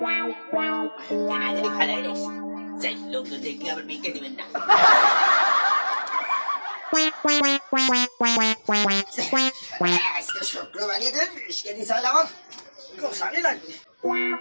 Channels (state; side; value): inverted; both; correlation -1.00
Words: কেনা জানি ফেলাই রে সেই লোকজন দেখলে আবার ভিক্ষে দিবেন না আজকে শুক্রবারে দিন বিস্কে দিছাল আমার গোসানি লাগবে